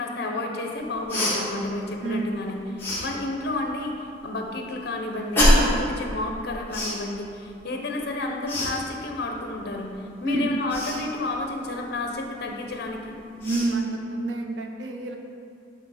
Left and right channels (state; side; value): normal; both; correlation 0.48